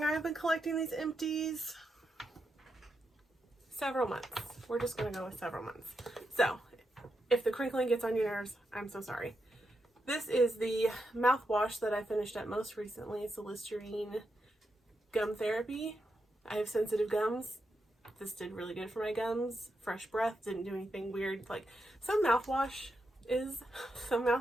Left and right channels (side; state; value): both; normal; correlation 0.85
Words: I've been collecting these Empties. Several months. We're just going to go with several months. So, if the crinkling gets on your nerves, I'm so sorry. This is the mouthwash that I finished up most recently. It's the Listerine Gum Therapy. I have sensitive gums. This did really good for my gums. Fresh breath, didn't do anything weird. Like, some mouthwashes,